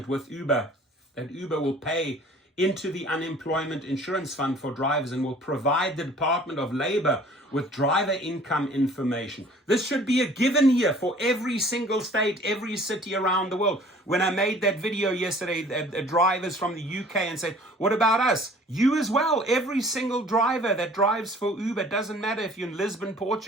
with Uber that Uber will pay into the unemployment insurance fund for drivers and will provide the Department of Labor with driver income information. This should be a given here for every single state, every city around the world. When I made that video yesterday, drivers from the UK and said, what about us? You as well. Every single driver that drives for Uber, doesn't matter if you're in Lisbon,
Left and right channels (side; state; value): both; normal; correlation 0.51